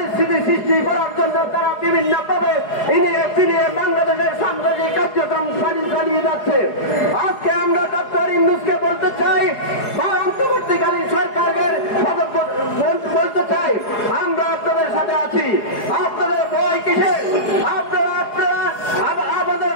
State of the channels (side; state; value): right; late; 4.8 ms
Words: সৃষ্টি করার জন্য তারা বিভিন্ন ভাবে ফিরিয়ে বাংলাদেশের সাম্প্রদায়িক কার্যক্রম চালিয়ে যাচ্ছে। আজকে আমরা ডক্টর ইউনূসকে বলতে চাই বা অন্তর্বর্তীকালীন সরকারের বলতে চাই আমরা আপনাদের সাথে আছি। আপনাদের ভয় কিসের? আমাদের